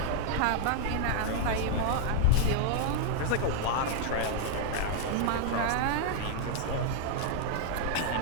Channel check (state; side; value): different; both; correlation 0.00